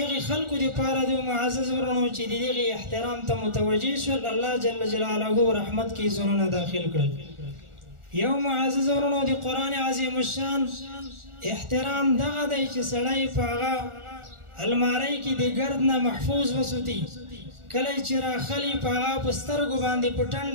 هغې خلکو دپاره د معزز ورونو چې د دغې احترام ته متوجه شول، الله جل جلاله رحمت کې زړونه داخل کړل. یو معزز ورونو د قرآن عظیم الشان احترام دغه دی چې سړی په هغه الماری کې د ګرد نه محفوظ وساتي، کله چې راخلي په هغه په سترګو باندې په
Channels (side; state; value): left; late; 1.4 ms